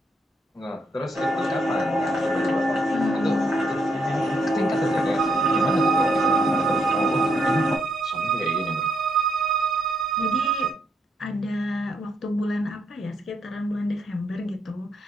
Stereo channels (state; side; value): normal; both; correlation 0.76